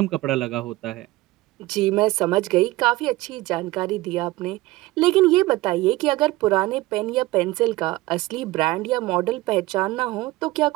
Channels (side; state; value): left; quieter; 19.2 dB